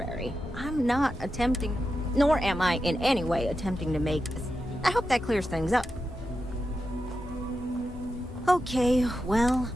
I'm not attempting... Nor am I in any way attempting to make this. I hope that clears things up. Okay, well,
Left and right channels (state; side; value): normal; both; correlation 0.89